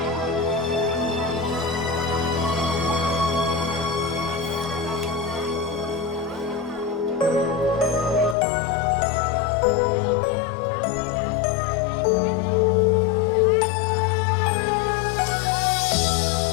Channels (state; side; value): drops out; right; at 8.3 s